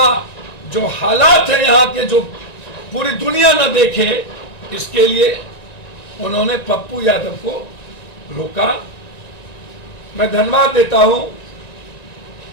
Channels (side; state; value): right; late; 1.9 ms